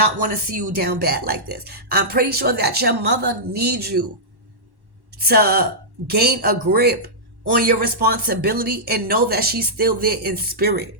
want to see you down bad like this. I'm pretty sure that your mother needs you to gain a grip on your responsibility and know that she's still there in spirit.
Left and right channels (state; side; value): late; left; 1.1 ms